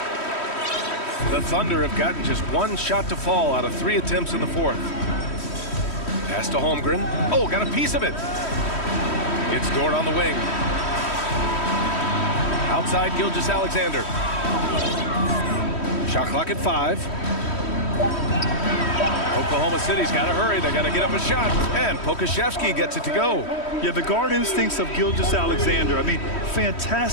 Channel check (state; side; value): late; right; 3.1 ms